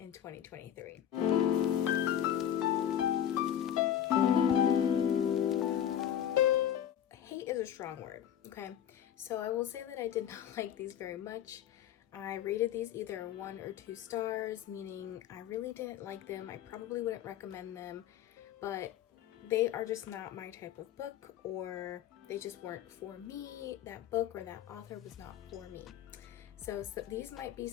2023. Hate is a strong word, okay? So I will say that I did not like these very much. I rated these either 1 or 2 stars, meaning I really didn't like them. I probably wouldn't recommend them, but they are just not my type of book, or they just weren't for me. That book or that author was not for me. So these might be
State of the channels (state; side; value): quieter; right; 10.1 dB